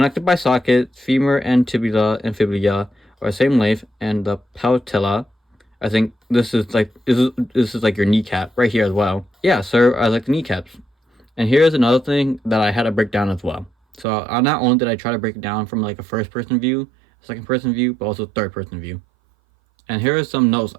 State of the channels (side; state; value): left; drops out; at 14.1 s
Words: by sockets, femur and tibia and fibula are the same length, and the patella, I think this is like your kneecap right here as well. Yeah, so I like the kneecaps. And here's another thing that I had to break down as well. So not only did I try to break it down from like a first person view, second person view, but also third person view. And here are some notes